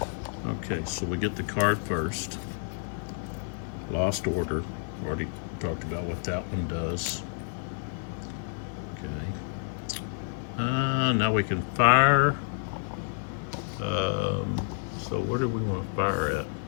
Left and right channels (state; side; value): silent; right; digital silence